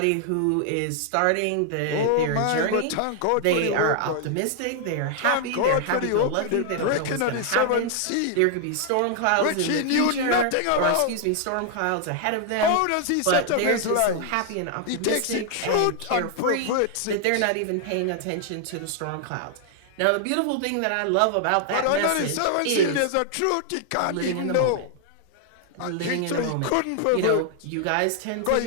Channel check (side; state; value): both; different; correlation 0.00